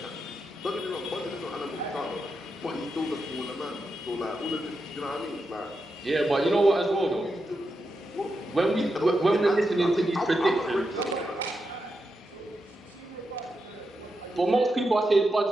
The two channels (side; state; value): both; normal; correlation 0.87